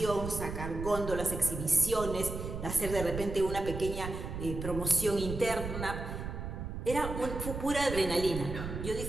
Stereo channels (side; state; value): right; noise; rumble, 6 dB below the sound